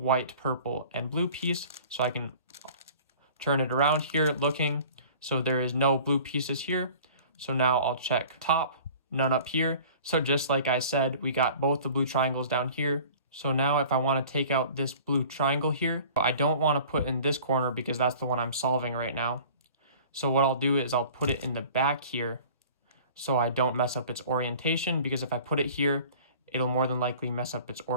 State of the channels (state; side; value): inverted; both; correlation -0.46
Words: purple, and blue piece, so I can turn it around here looking. So there is no blue pieces here. So now I'll check top, none up here. So just like I said, we got both the blue triangles down here. So now if I want to take out this blue triangle here, I don't want to put in this corner because that's the one I'm solving right now. So what I'll do is I'll put it in the back here so I don't mess up its orientation, because if I put it here, it'll more than likely mess up its